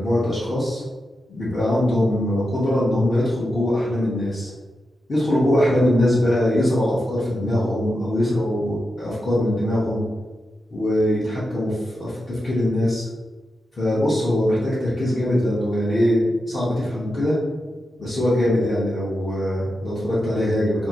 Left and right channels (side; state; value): both; normal; correlation 0.88